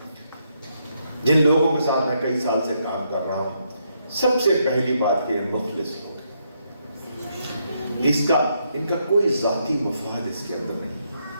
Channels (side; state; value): both; inverted; correlation -0.77